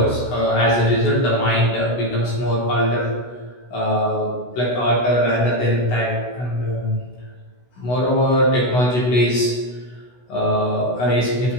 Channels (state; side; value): late; right; 16 ms